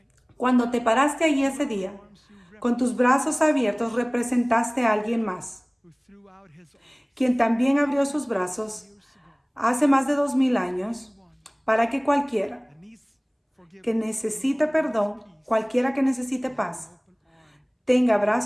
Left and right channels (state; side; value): identical; both; correlation 1.00